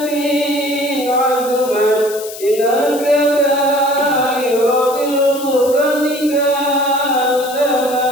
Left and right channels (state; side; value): noise; left; hiss, 13 dB below the sound